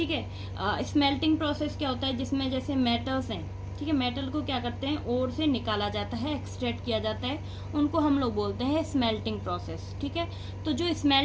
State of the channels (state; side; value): identical; both; correlation 1.00